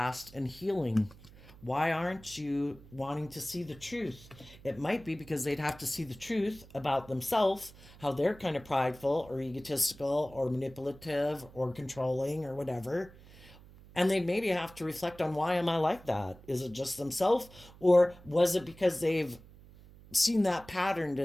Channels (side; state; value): right; noise; hum, 21 dB below the sound